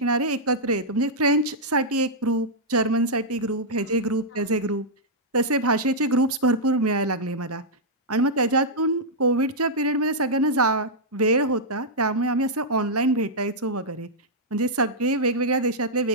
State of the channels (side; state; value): both; normal; correlation -0.08